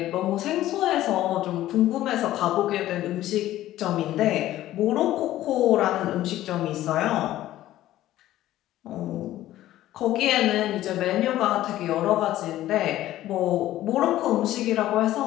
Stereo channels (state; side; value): quieter; right; 14.3 dB